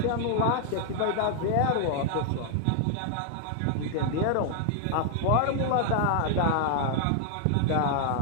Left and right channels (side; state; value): both; different; correlation 0.00